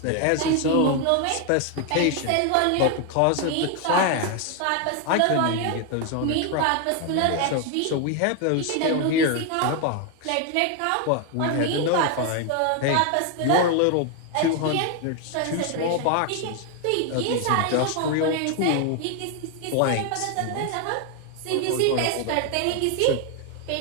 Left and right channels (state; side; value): different; both; correlation 0.01